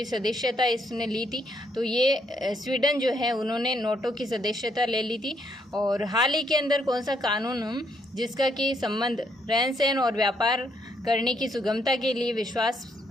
सदस्यता इसने ली थी? तो ये स्वीडन जो है उन्होंने नोटो की सदस्यता ले ली थी। और हाल ही के अंदर कौन सा कानून जिसका कि संबंध रहन सहन और व्यापार करने की सुगमता के लिए विश्वास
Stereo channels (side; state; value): both; normal; correlation 0.73